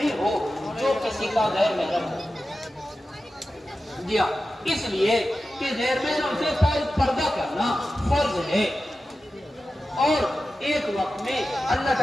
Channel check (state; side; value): normal; both; correlation 0.93